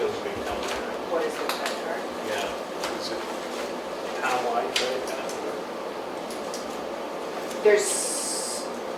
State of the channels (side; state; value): both; identical; correlation 1.00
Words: big number. What is the credit card? Yeah. Is it townwide credit card? There's